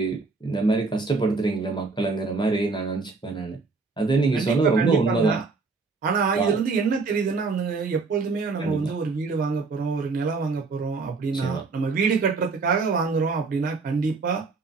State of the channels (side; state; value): left; quieter; 4.2 dB